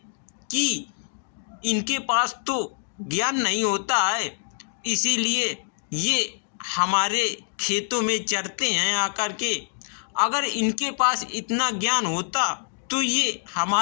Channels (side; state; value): right; silent; 61 dB below the other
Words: कि इनके पास तो ज्ञान नहीं होता है, इसीलिए ये हमारे खेतों में चरते हैं आकर के। अगर इनके पास इतना ज्ञान होता तो ये